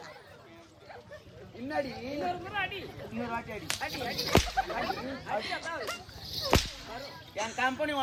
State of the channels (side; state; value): both; identical; correlation 1.00